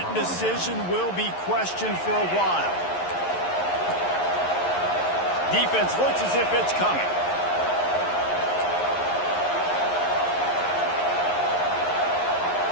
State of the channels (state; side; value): late; right; 11 ms